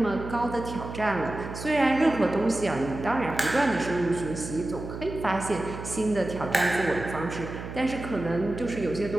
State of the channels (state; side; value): noise; right; hum, 9 dB below the sound